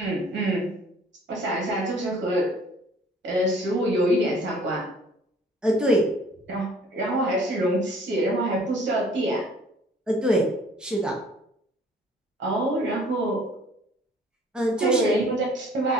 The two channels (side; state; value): both; normal; correlation 0.55